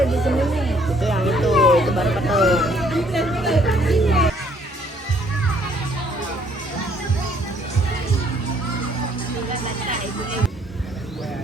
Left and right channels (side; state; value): both; normal; correlation 0.64